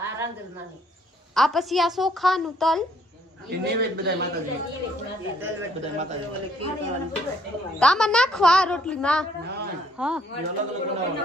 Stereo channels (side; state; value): both; normal; correlation 0.66